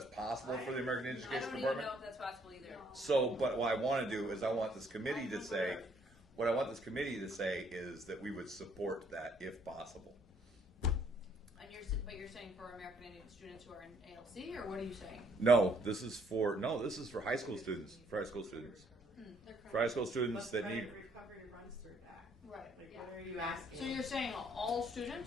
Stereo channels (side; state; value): both; normal; correlation 0.66